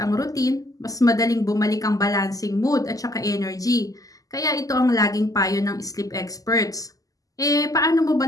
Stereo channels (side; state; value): right; late; 0.17 ms